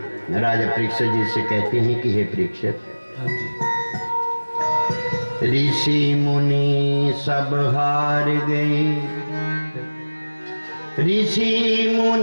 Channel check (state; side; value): inverted; both; correlation -1.00